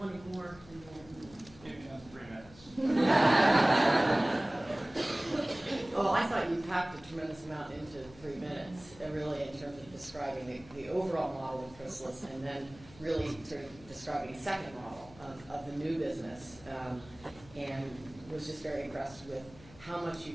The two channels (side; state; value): left; noise; hum, 21 dB below the sound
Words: wanting more and more. Maybe another 3 minutes. Well, I thought you packed a tremendous amount into 3 minutes, really in terms of describing the overall model of Chrysalis, and then really sort of describing a second model of the new business. And was just very impressed with how much